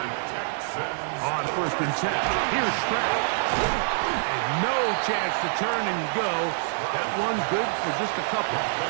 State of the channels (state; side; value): silent; left; digital silence